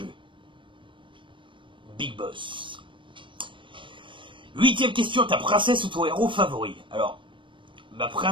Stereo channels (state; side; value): late; left; 0.24 ms